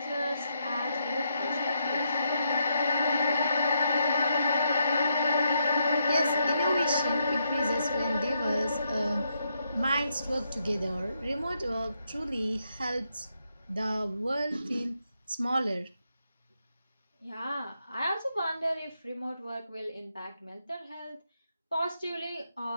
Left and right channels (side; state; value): both; inverted; correlation -0.79